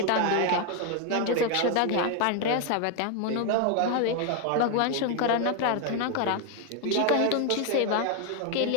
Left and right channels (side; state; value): both; different; correlation 0.01